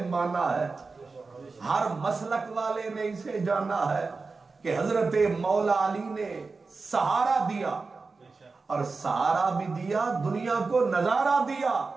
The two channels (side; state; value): left; quieter; 4.2 dB